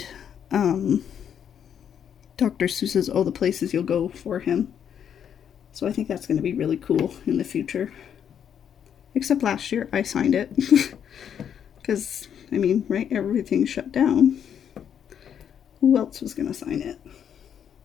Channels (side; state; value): right; quieter; 8.6 dB